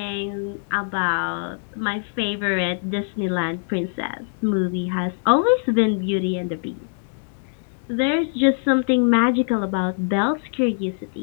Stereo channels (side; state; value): right; silent; 63 dB below the other